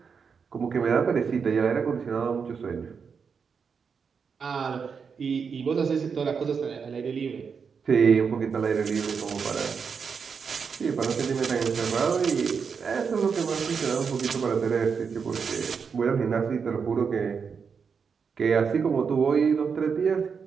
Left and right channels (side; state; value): left; quieter; 6.0 dB